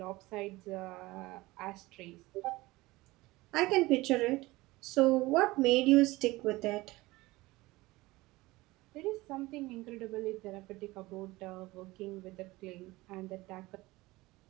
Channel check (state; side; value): quieter; left; 20.2 dB